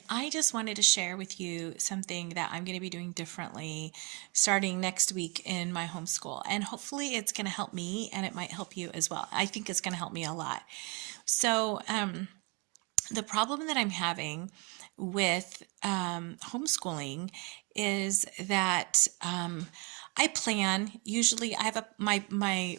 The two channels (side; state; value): left; quieter; 31.2 dB